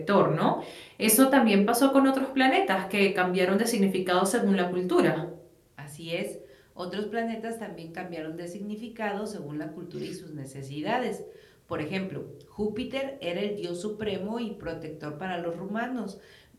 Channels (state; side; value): identical; both; correlation 1.00